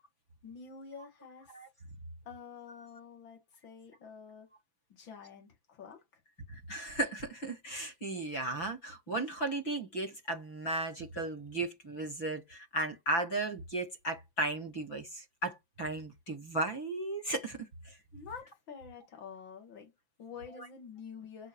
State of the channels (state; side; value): late; right; 5.9 ms